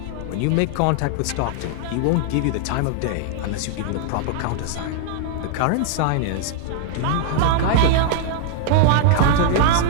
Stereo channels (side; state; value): both; different; correlation -0.01